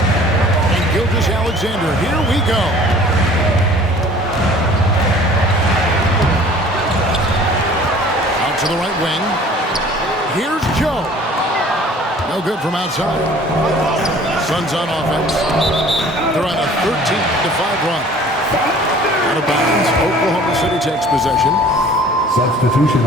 And Gilgeous-Alexander, here we go. Out to the right wing. Here's Joe. No good from outside. Suns on offense. They're on a 13-5 run. Out of bounds. Oklahoma City takes possession. Substitution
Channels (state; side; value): normal; both; correlation 0.50